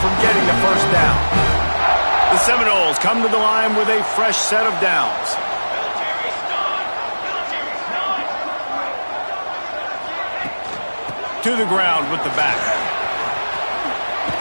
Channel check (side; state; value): both; inverted; correlation -1.00